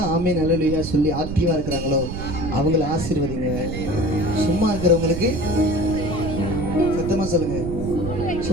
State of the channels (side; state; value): right; noise; rumble, 6 dB below the sound